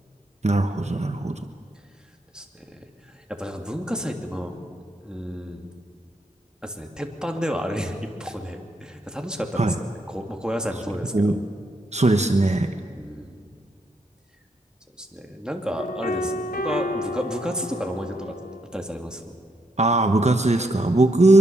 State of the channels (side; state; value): both; normal; correlation 0.77